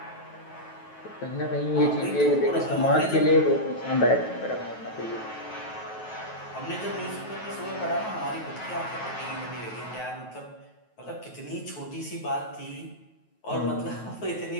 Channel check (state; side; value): late; right; 9.3 ms